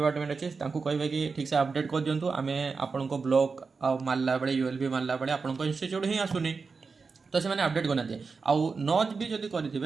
अच्छे कहे कि ठीक से अपडेट कर दिंतु आम आपण ब्लॉक आ मारला बेले यूएलबी मारला बेले आपण इंस्टीट्यूट ही आसुनी तो से अपडेट करना आउ नच भी जब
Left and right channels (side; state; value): left; quieter; 4.7 dB